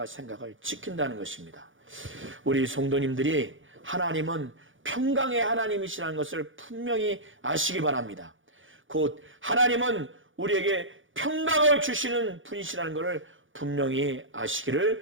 생각을 지킨다는 것입니다. 우리 성도님들이 하나님은 평강의 하나님이시라는 것을 분명히 아시기 바랍니다. 곧 하나님은 우리에게 평강을 주시는 분이시라는 것을 분명히 아시기를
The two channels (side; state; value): left; late; 0.57 ms